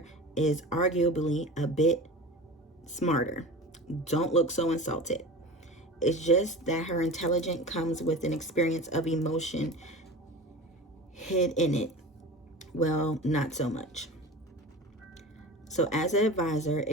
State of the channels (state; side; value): normal; both; correlation 0.33